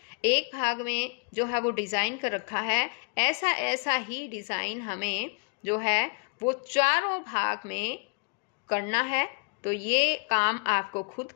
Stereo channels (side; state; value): right; quieter; 35.8 dB